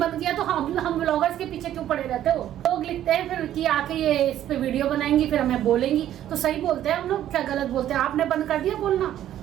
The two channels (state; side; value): quieter; left; 11.8 dB